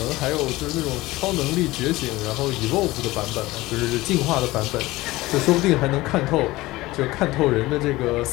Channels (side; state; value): right; quieter; 19.0 dB